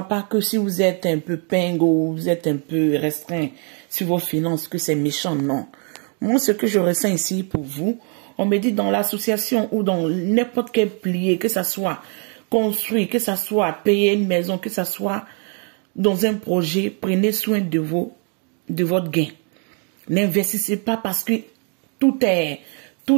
pas que si vous êtes un peu pingo ou vous êtes un peu restreint sur vos finances, que c'est méchant, non. Moi, ce que je ressens ici pour vous, on me dit dans l'association ou dans n'importe quel pilier, que ça soit construit, que ça soit payer une maison, que ça soit dans un projet, prenez soin de votre gain. N'investissez pas parce que tout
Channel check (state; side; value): quieter; left; 39.3 dB